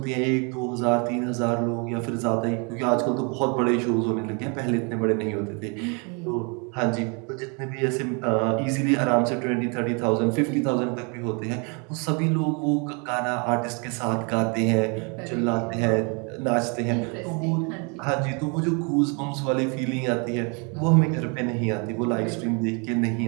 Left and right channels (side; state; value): left; quieter; 34.2 dB